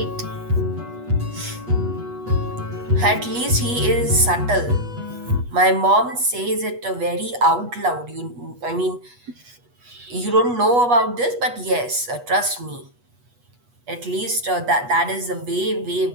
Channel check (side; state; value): left; late; 8.2 ms